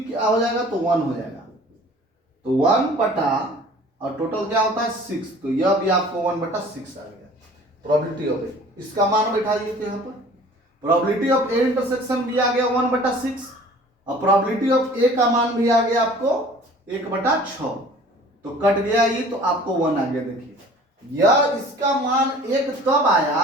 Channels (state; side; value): normal; both; correlation 0.48